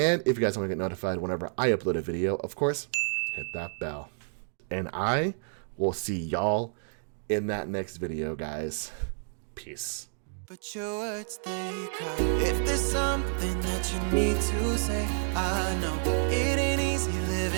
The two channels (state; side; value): silent; left; digital silence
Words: if you guys want to get notified whenever I upload a video, of course, hit that bell. And I will see y'all in that next video, guys. Peace. But your words, they cry. If there's something that you need to say, I know it ain't easy